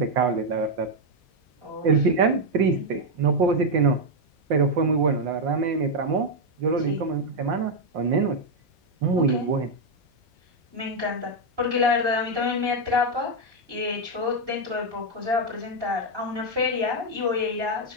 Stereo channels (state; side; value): normal; both; correlation 0.01